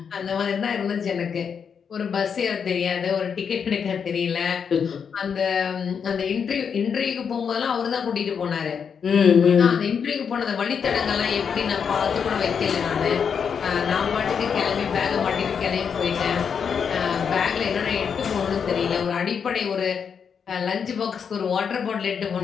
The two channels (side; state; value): right; quieter; 6.8 dB